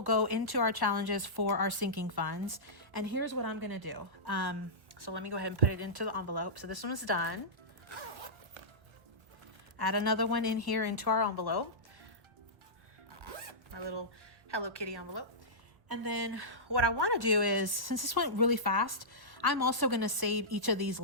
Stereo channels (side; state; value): left; late; 1.4 ms